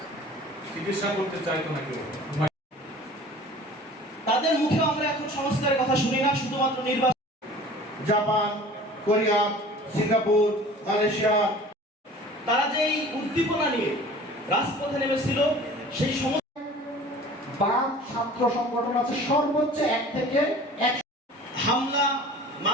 চিকিৎসা করতে চাইতো না কেউ। তাদের মুখে আমরা এখন সংস্কারের কথা শুনি না, শুধুমাত্র নির্বাচন। জাপান, কোরিয়া, সিঙ্গাপুর, মালয়েশিয়া, তারা যে এই উদ্দীপনা নিয়ে রাজপথে নেমেছিল, সেই সমস্ত বাম ছাত্র সংগঠন আছে সর্বোচ্চ 1 থেকে 1 হামলা,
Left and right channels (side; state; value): both; normal; correlation 0.44